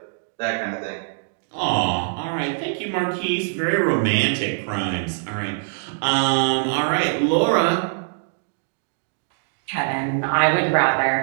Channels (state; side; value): silent; left; digital silence